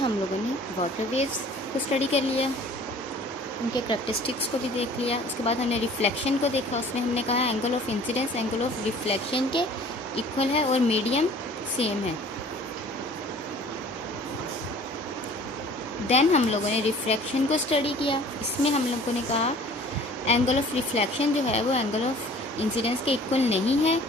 लोगों ने वाटर वेव्स को स्टडी कर लिया, उनके करैक्टरिस्टिक्स को भी देख लिया। उसके बाद हमने रिफ्लेक्शन को देखा, उसमें हमने कहा angle of incidence angle of reflection के इक्वल है और मीडियम सेम है। देन हम लोगों ने रिफ्रैक्शन को स्टडी किया, इसमें हम लोगों ने कहा एंगल ऑफ रिफ्लेक्शन जो है वो एंगल ऑफ इंसिडेंस के इक्वल नहीं है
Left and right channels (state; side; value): normal; both; correlation 0.49